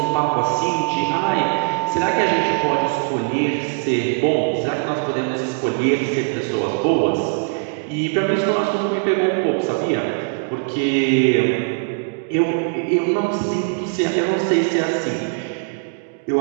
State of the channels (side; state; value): left; silent; digital silence